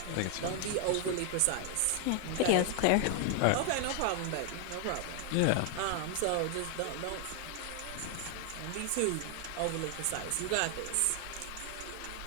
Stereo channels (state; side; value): different; both; correlation 0.00